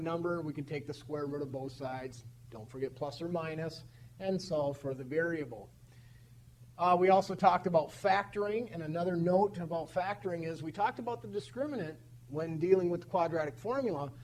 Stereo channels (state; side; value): identical; both; correlation 1.00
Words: number, we can take the square root of both sides, don't forget plus or minus, and solve for the variable. We also talked about factoring, and another note about factoring is we talked about the discriminant when dealing with the quadratic formula,